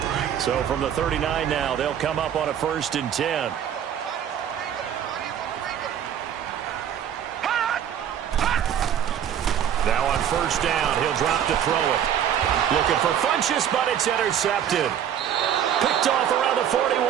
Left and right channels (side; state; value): left; quieter; 9.5 dB